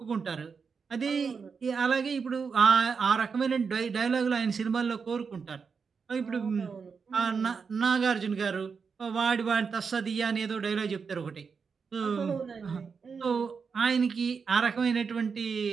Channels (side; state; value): left; quieter; 5.6 dB